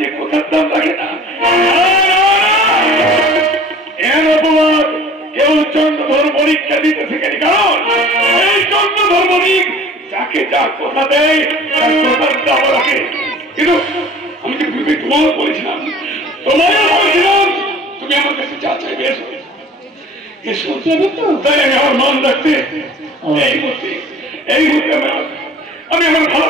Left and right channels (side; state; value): both; normal; correlation 0.46